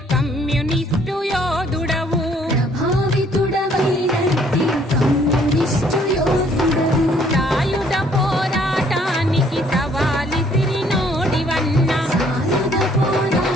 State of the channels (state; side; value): normal; both; correlation 0.62